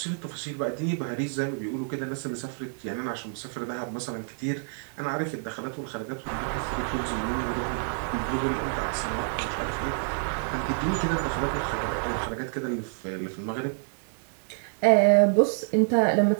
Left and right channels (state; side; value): silent; left; 59 dB below the other